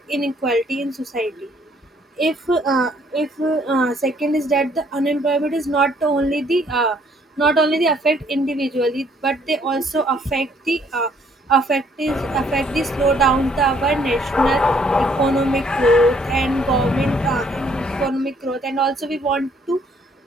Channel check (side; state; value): both; normal; correlation 0.64